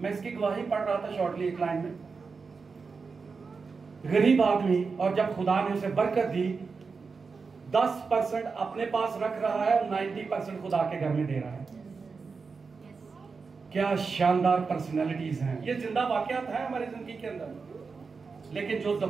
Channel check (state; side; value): quieter; left; 4.8 dB